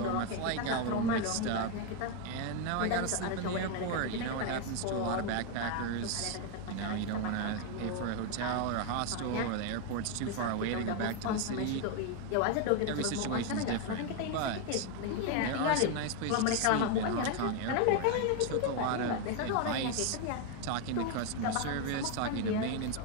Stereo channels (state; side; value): different; both; correlation 0.01